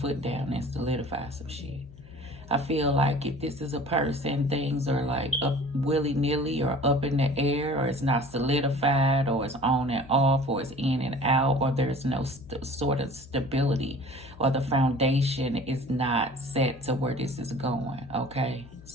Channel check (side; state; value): left; noise; hum, 20 dB below the sound